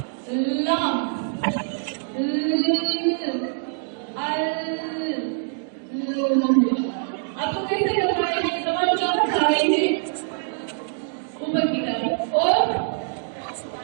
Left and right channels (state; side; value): silent; left; digital silence